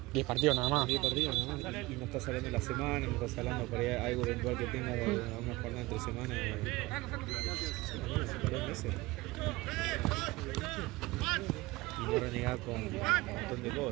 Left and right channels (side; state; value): left; quieter; 20.9 dB